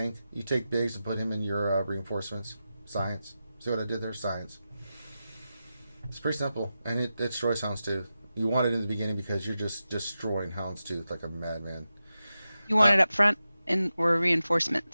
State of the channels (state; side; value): inverted; both; correlation -0.92